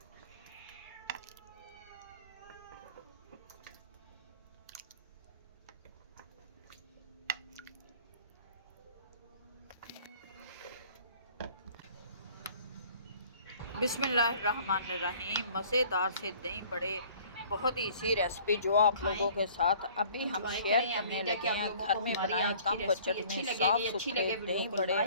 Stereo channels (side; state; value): both; inverted; correlation -0.53